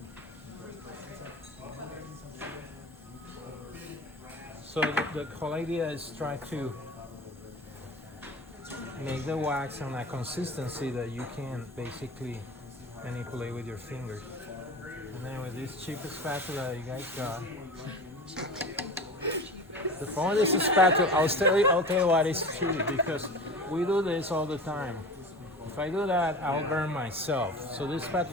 So the whole idea is try to make the wax on a consistency that you can basically manipulate with your fingers. And then with this cheap spatula that you guys got. The point is a spatula. I'll tell you what is cheap because we do this all the time. If I do that, I'll burn myself. So this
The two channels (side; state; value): both; normal; correlation 0.33